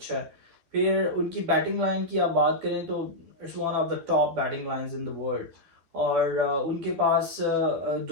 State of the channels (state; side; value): late; left; 12 ms